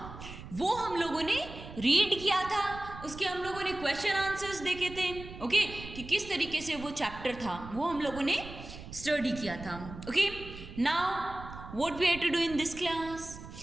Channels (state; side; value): noise; right; rumble, 13 dB below the sound